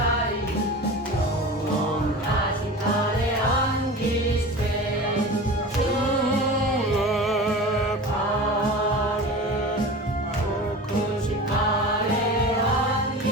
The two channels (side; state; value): both; normal; correlation 0.34